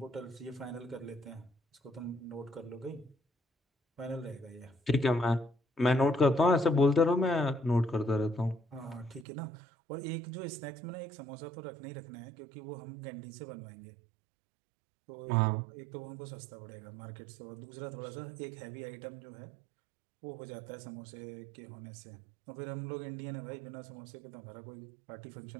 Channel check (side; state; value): left; drops out; at 9.2 s